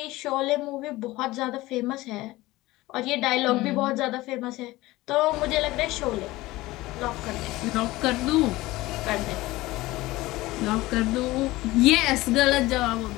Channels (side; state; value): right; quieter; 18.9 dB